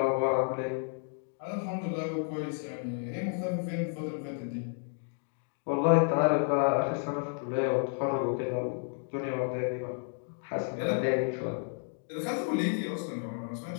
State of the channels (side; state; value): right; silent; 57 dB below the other